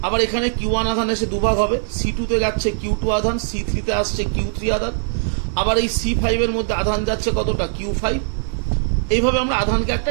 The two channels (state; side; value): silent; left; digital silence